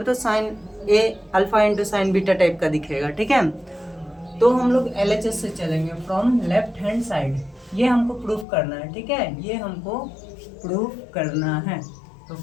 तो sine A alpha into sine beta type का दिखेगा, ठीक है। तो हम लोग LHS से चलेंगे, फ्रॉम लेफ्ट हैंड साइड, ये हमको प्रूफ करना है, ठीक है, ये हमको प्रूफ करना है। तो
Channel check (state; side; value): drops out; right; at 8.5 s